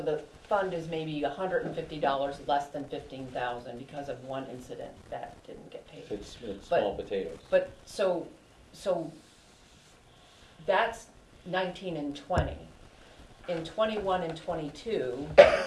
the fund is maybe $150 less than 15,000 because of one incident that didn't get paid. It's But- small potatoes. But, so that's 19 and 20. In 21 and 22,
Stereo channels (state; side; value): identical; both; correlation 1.00